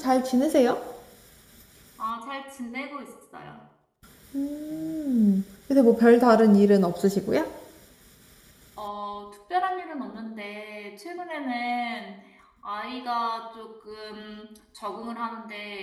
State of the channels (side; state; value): both; identical; correlation 1.00